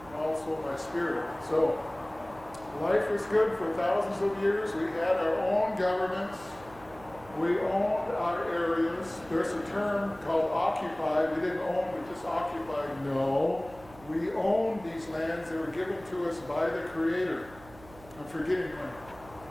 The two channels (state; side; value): noise; right; hum, 21 dB below the sound